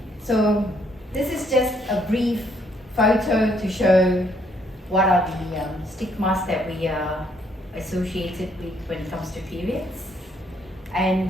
So this is just a brief photo to show what are the stigmas that we are associated with when it comes to periods.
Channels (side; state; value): both; normal; correlation 0.69